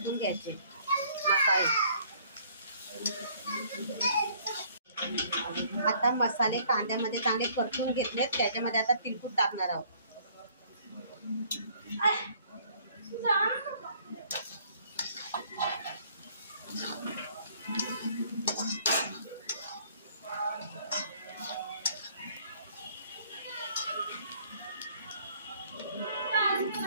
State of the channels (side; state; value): both; inverted; correlation -0.60